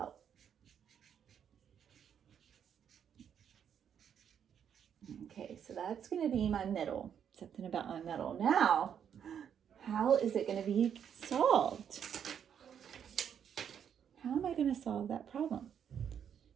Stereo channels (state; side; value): quieter; left; 8.4 dB